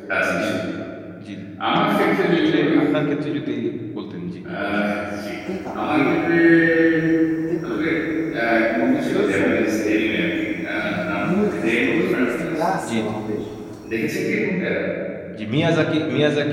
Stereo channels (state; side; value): identical; both; correlation 1.00